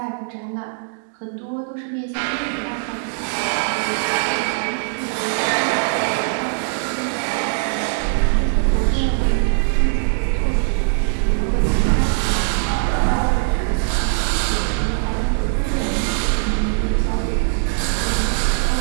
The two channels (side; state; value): left; silent; digital silence